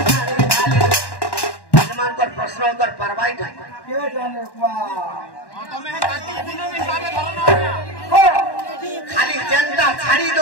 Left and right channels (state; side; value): late; right; 1.1 ms